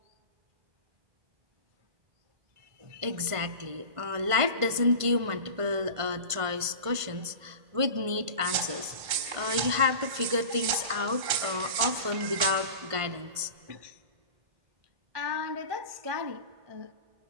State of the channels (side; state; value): left; late; 1.5 ms